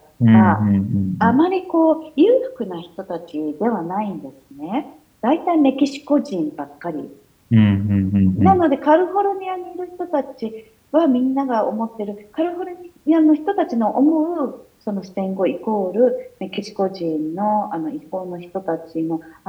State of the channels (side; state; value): both; identical; correlation 1.00